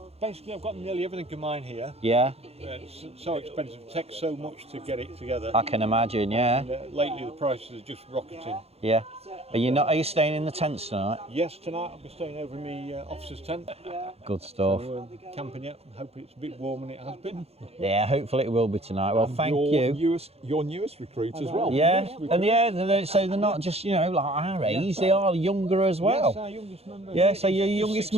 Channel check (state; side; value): late; left; 0.29 ms